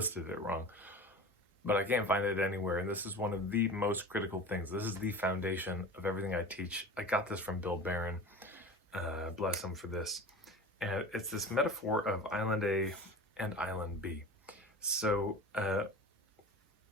it wrong. But I can't find it anywhere, and this is one of the most critical things. This is the foundation of everything I teach. I got this from Bill Barron. Bless him for this. And it's this metaphor of Island A and Island B. So,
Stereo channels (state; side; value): normal; both; correlation 0.34